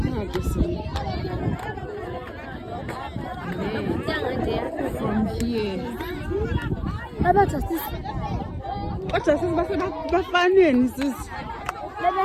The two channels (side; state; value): both; identical; correlation 1.00